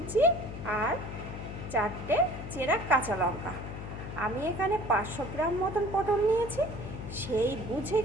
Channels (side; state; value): left; noise; hum, 9 dB below the sound